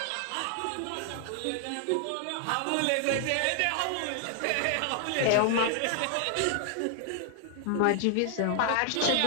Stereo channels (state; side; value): different; both; correlation 0.00